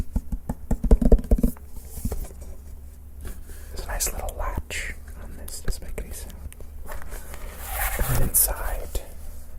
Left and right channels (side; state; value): both; identical; correlation 1.00